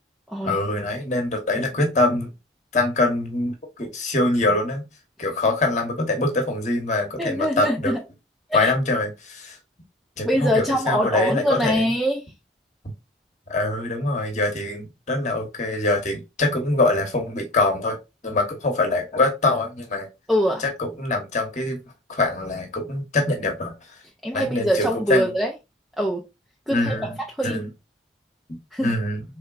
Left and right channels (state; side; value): normal; both; correlation 0.40